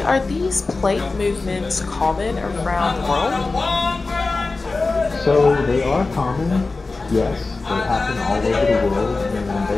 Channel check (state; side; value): quieter; right; 3.7 dB